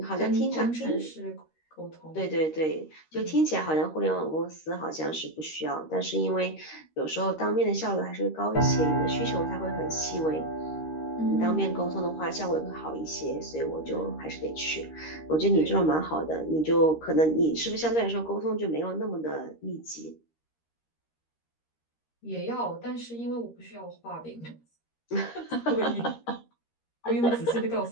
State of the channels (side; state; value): right; late; 13 ms